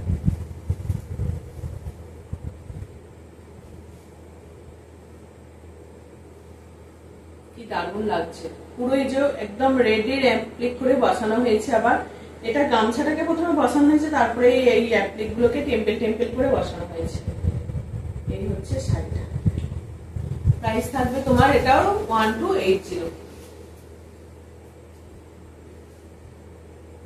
দারুণ লাগছে, পুরো এই যে একদম রেডের অ্যাপ্লিক করে বসানো হয়েছে। আবার এটা গামছাটাকে প্রথমে বসানো হয়েছে, তারপরে এই অ্যাপ্লিক গুলোকে টেম্পেল টেম্পেল করে বসানো হয়েছে। এই হচ্ছে শাড়িটা, প্রাইস থাকবে তোমার এটাও 1280।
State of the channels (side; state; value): both; identical; correlation 1.00